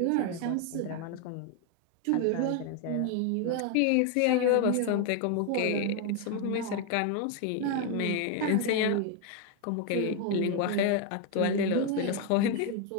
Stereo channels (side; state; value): both; different; correlation 0.01